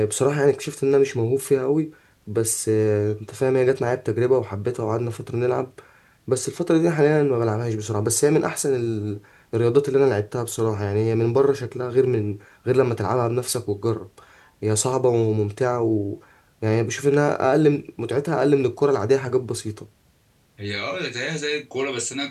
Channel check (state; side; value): identical; both; correlation 1.00